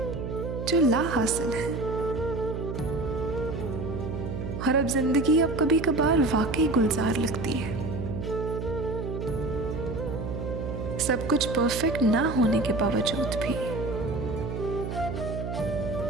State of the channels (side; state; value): right; noise; hum, 5 dB below the sound